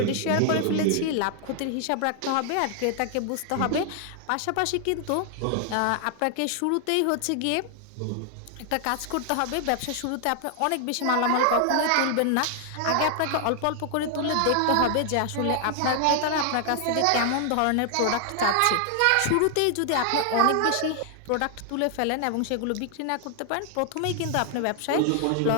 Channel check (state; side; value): different; both; correlation 0.00